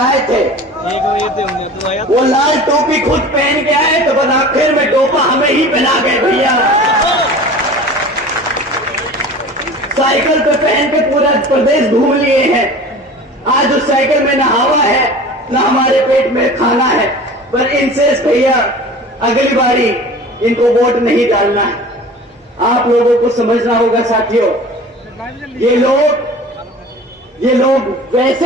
थे, वो लाल टोपी खुद पहन के आए तो बस आखिर में टोपा हमें ही पहना गए भैया। साइकिल पे पहन के पूरा प्रदेश घूम लिए हैं, आज उस साइकिल में ना हवा है ना हमारे पेट में खाना है, पर इनसे भैया अगली बारी इनको वोट नहीं डालना है। आप लोगों को समझना होगा साथियों, ये लोग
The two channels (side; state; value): both; normal; correlation 0.40